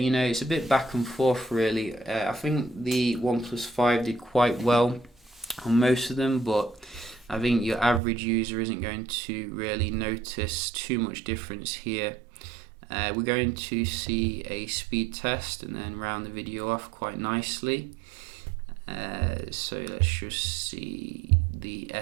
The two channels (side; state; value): left; drops out; at 8.0 s